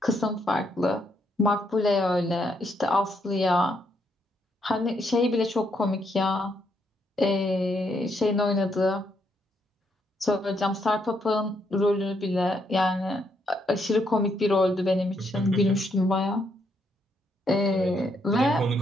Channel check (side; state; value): both; normal; correlation 0.75